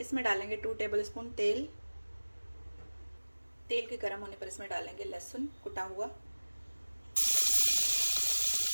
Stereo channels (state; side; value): inverted; both; correlation -1.00